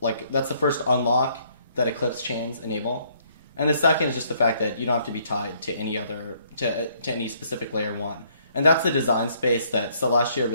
that's the first unlock that Eclipse chains enable. And the second is just the fact that you don't have to be tied to any specific layer 1. And that's the design space that Celestia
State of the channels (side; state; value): both; inverted; correlation -0.66